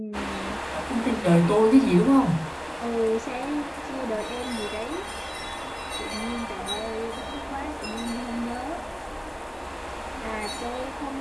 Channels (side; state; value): both; identical; correlation 1.00